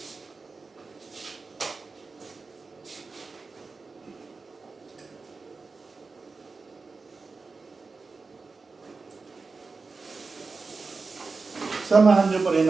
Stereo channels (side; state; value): left; quieter; 4.2 dB